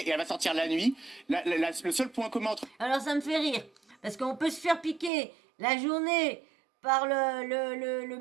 elle va sortir la nuit. Le seul point commun entre Alors ça me fait rire, parce qu'on peut se faire piquer la journée par le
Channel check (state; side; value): drops out; left; at 5.1 s